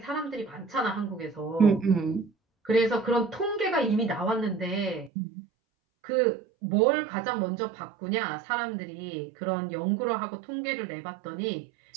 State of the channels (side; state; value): left; drops out; at 5.1 s